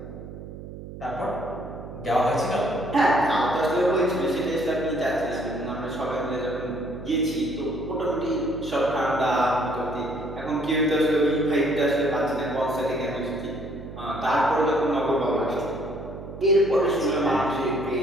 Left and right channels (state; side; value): noise; right; hum, 12 dB below the sound